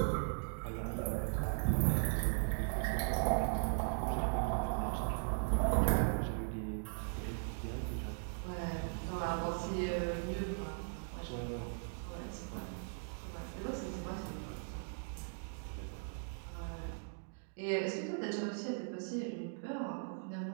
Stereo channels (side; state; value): left; silent; digital silence